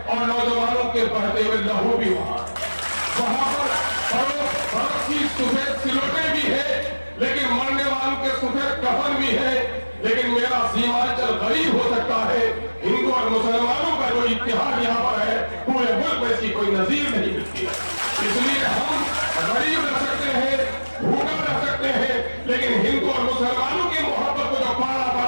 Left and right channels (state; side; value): inverted; both; correlation -1.00